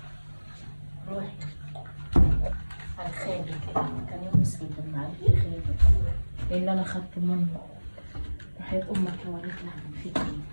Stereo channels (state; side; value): inverted; both; correlation -1.00